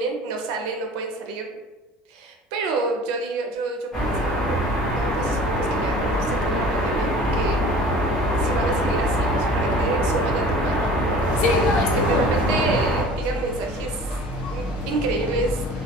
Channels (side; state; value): both; normal; correlation 0.44